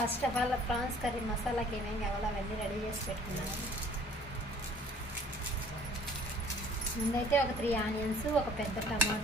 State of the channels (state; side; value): normal; both; correlation 0.54